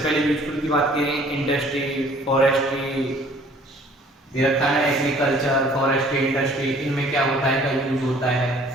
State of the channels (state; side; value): normal; both; correlation 0.55